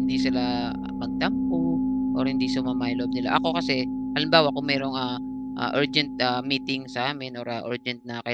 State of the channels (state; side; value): identical; both; correlation 1.00